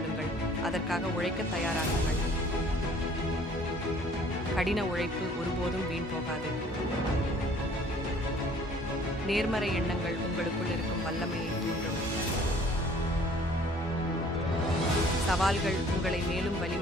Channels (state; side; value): normal; both; correlation 0.55